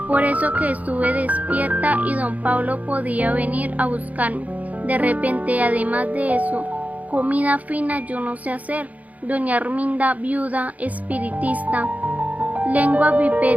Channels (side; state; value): left; late; 0.074 ms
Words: por eso que estuve despierta y don Pablo podía venir a buscarme. De repente, además de eso, comida fina yo no sé hacer. Doña Arminda, viuda, espiritista, lengua